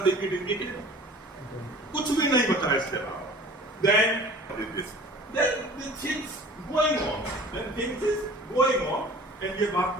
it is eternal. कुछ भी नहीं बचा इसके अलावा. Then what is this? Then the things going on. Then things is going on. And ये बात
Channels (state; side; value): normal; both; correlation 0.45